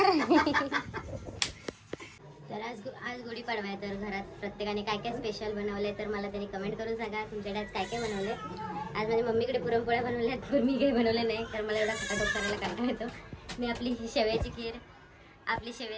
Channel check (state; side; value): identical; both; correlation 1.00